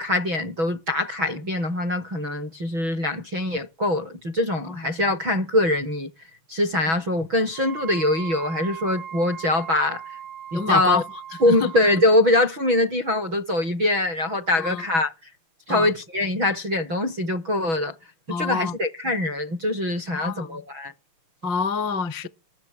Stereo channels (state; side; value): late; left; 6.2 ms